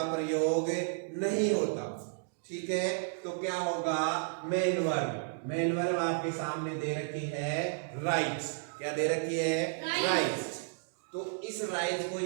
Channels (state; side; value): silent; left; digital silence